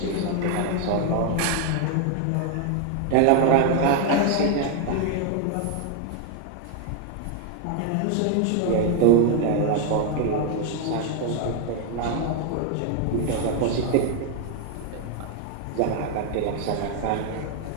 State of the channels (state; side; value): different; both; correlation 0.00